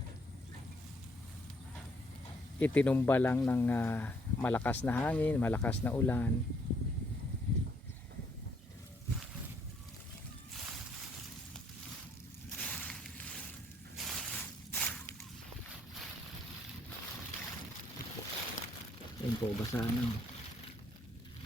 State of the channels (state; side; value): normal; both; correlation 0.68